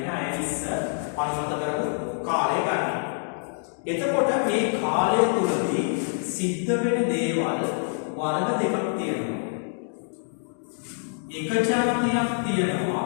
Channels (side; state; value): right; silent; digital silence